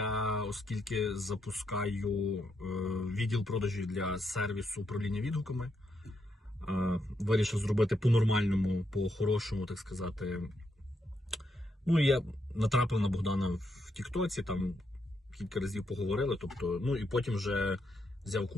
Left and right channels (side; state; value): both; normal; correlation 0.80